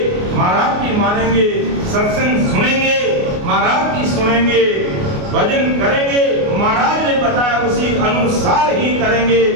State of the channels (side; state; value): left; late; 29 ms